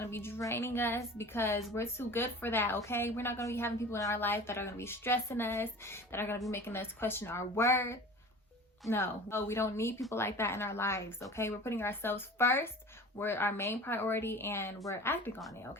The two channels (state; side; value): normal; both; correlation 0.39